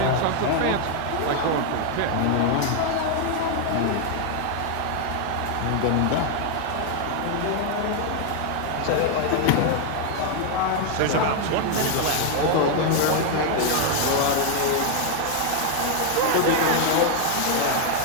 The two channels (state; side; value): different; both; correlation 0.00